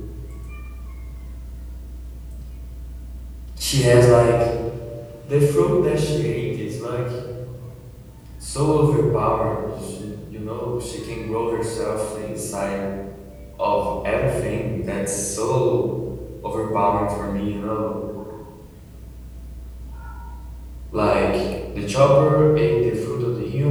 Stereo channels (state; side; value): identical; both; correlation 1.00